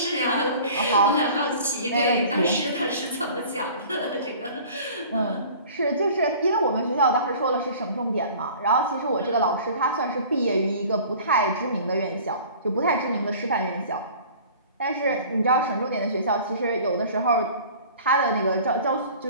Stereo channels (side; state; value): both; inverted; correlation -0.45